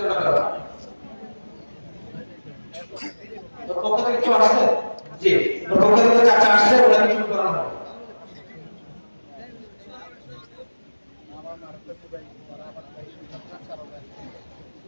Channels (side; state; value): both; inverted; correlation -1.00